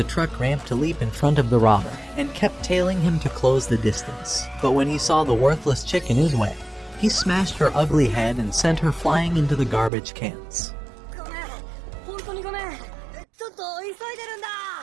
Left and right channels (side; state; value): left; drops out; at 9.9 s